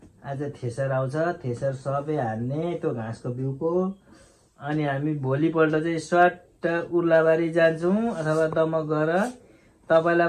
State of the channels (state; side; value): identical; both; correlation 1.00